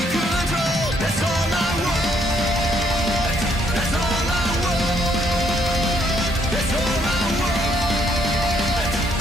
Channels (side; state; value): both; normal; correlation 0.70